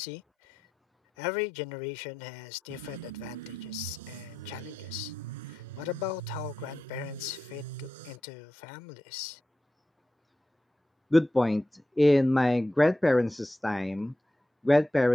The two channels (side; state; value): both; normal; correlation 0.90